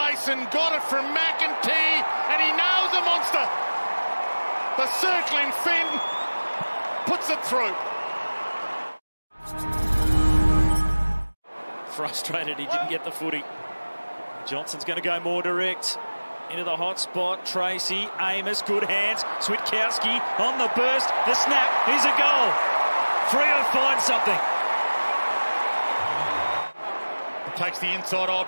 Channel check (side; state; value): both; inverted; correlation -1.00